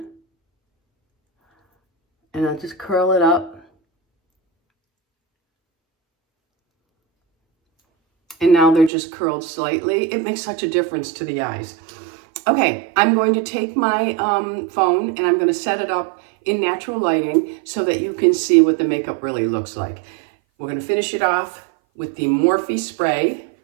And I'll just curl it up. And now they're just curled slightly. It makes such a difference to the eyes. Okay, I'm going to take my phone and I'm going to set it up in natural lighting so that you can see what the makeup really looks like. We're going to finish it off with the Morphe spray.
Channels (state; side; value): drops out; left; at 8.9 s